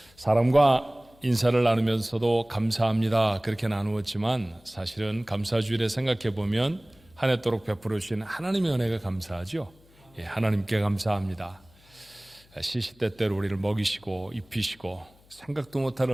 사람과 인사를 나누면서도 감사합니다 그렇게 나누었지만 사실은 감사주일에 생각해 보면 한 해도록 베풀어 주신 하나님의 은혜가 감사하죠. 하나님께 감사합니다. 시시때때로 우리를 먹이시고 입히시고 생각도 못할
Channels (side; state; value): left; noise; hum, 28 dB below the sound